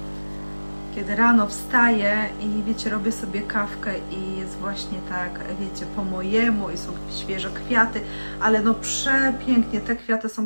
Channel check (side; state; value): both; inverted; correlation -1.00